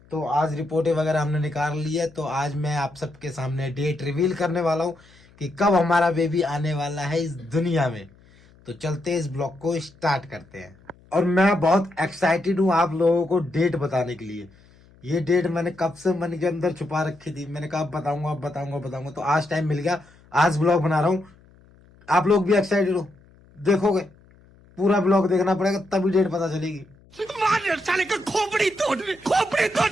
तो आज रिपोर्टें वगैरह हमने निकाल ली है, तो आज मैं आप सबके सामने डेट रिवील करने वाला हूं कि कब हमारा बेबी आने वाला है इस दुनिया में। तो चलते हैं, इस ब्लॉग को स्टार्ट करते हैं। और मैं बहुत एक्साइटेड हूँ आप लोगों को डेट बताने के लिए। ये डेट मैंने कब से मन के अंदर छुपा रखी थी, मैंने कहा बताऊंगा बताऊंगा बताऊंगा, तो आज टाइम मिल गया, आज ब्लॉग बना रहा हूँ। आप लोग भी एक्साइटेड हो, देखोगे पूरा ब्लॉग देखना पड़ेगा तभी डेट पता चलेगी। साले का खोपड़ी तोड़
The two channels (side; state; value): left; noise; hum, 28 dB below the sound